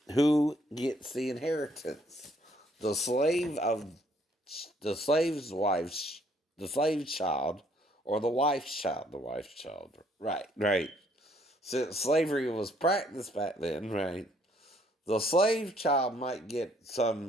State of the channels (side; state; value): both; normal; correlation 0.65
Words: who gets the inheritance? The slave of the slave's wife's, the slave's child, or the wife's child? The wife's child. Right, right. Since slavery was practiced back then, right? The slave child might get